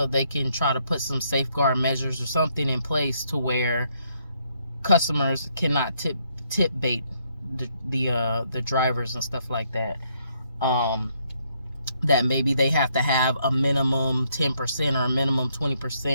they can try to put some safeguard measures or something in place to where customers cannot tip bait the drivers and stuff like that. That maybe they have to have a minimum 10% or a minimum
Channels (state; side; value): inverted; both; correlation -0.72